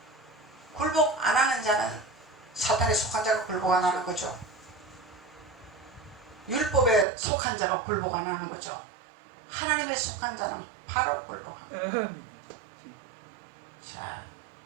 굴복 안 하는 자는 사탄에 속한 자가 굴복 안 하는 거죠. 율법에 속한 자가 굴복 안 하는 거죠. 하나님에 속한 자는 바로 굴복합니다. 자,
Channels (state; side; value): drops out; left; at 7.1 s